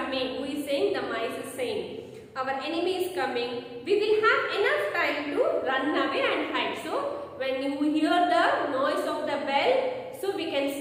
Who is saying? The mice is saying. Our enemy is coming. We will have enough time to run away and hide. So when you hear the noise of the bell, so we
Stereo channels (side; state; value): both; identical; correlation 1.00